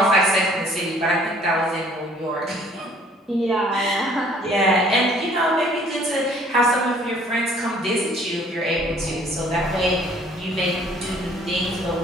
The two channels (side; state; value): both; normal; correlation 0.57